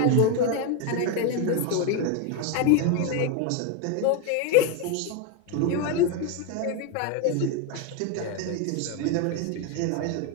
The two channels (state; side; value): different; both; correlation 0.02